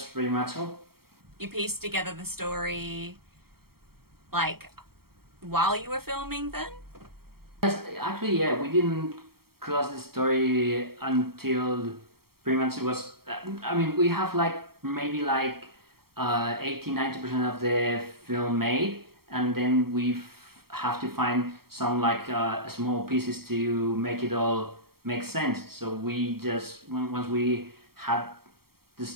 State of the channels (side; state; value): left; late; 0.94 ms